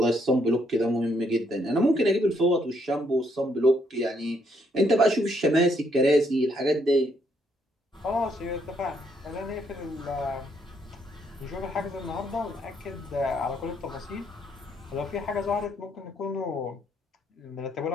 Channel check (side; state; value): both; normal; correlation 0.72